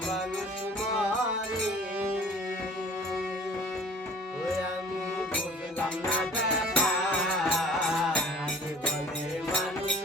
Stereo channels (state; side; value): normal; both; correlation 0.48